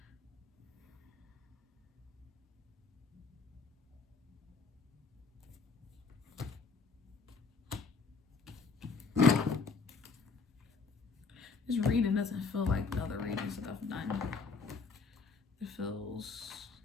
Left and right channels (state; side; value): quieter; right; 4.6 dB